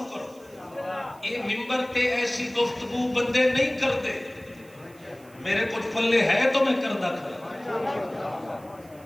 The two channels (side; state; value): right; noise; hiss, 27 dB below the sound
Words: کرو. یہ ممبر تے ایسی گفتگو بندے نہیں کرتے. میرے کچھ پلے ہے تو میں کردہ کھڑا.